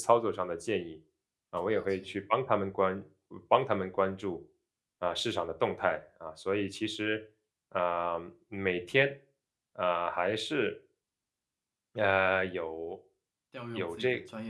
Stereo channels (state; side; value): identical; both; correlation 1.00